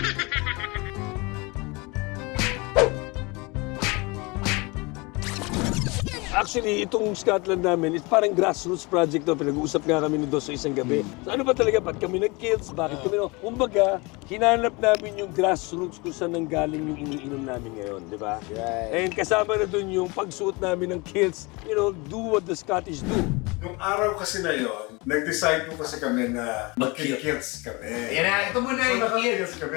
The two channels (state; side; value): quieter; right; 26.3 dB